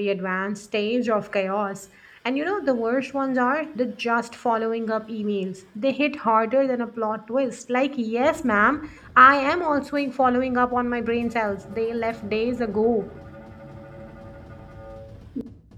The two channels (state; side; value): identical; both; correlation 1.00